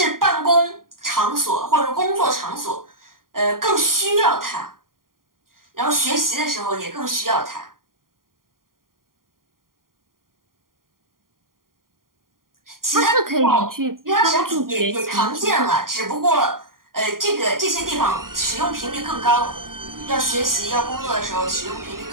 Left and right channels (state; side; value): late; left; 0.91 ms